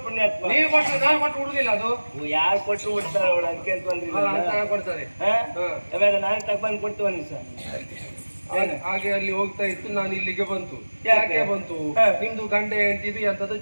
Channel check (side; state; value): both; inverted; correlation -1.00